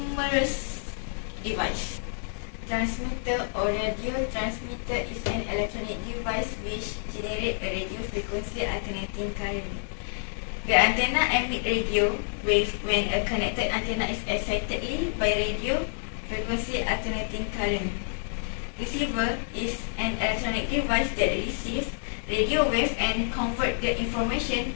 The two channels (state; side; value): silent; right; digital silence